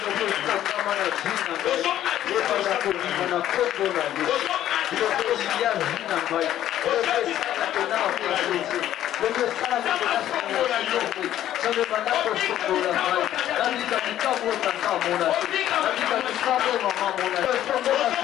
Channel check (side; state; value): right; quieter; 12.1 dB